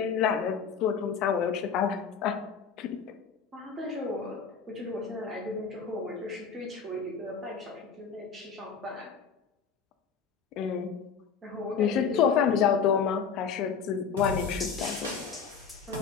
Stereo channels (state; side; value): quieter; right; 6.3 dB